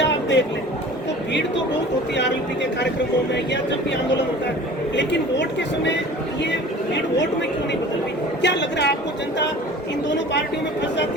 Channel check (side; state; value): both; normal; correlation 0.43